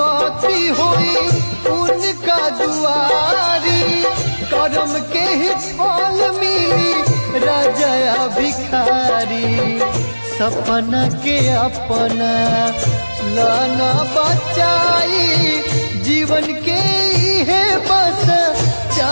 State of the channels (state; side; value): inverted; both; correlation -1.00